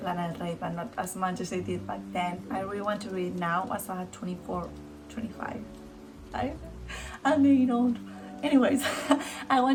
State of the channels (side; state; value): both; identical; correlation 1.00